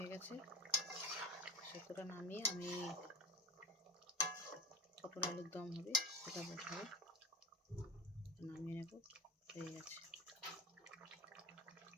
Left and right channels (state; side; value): normal; both; correlation 0.30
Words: গেছে। শুক্তোটা নামিয়ে আমি পটল আলুর দম হবে, ওটা বসাবো, নামিয়ে নেব। হয়ে গেছে।